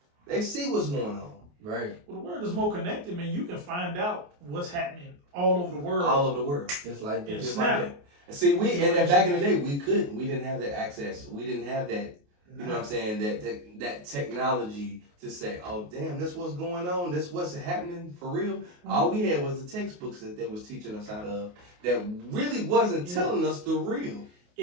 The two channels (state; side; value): late; left; 28 ms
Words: what's going on. Right. Well, the world is more connected, man. You can find out what's happening all over the world. All over the world. Just like that. Just like that. And see, and back in the day, we couldn't. We didn't have that access. We didn't have that, you know what I'm saying, that technology to say, oh, damn, this what's going on. This what's happening for real. All we had was the textbooks that they was teaching us out of that really wasn't telling us the real.